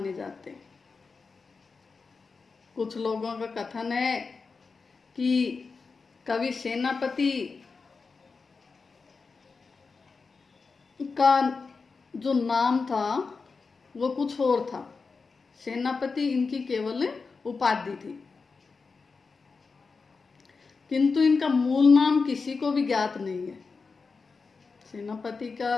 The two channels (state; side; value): quieter; right; 4.6 dB